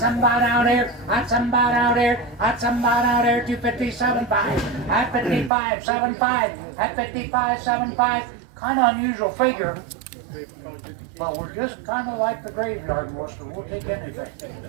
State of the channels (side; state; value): left; drops out; at 5.5 s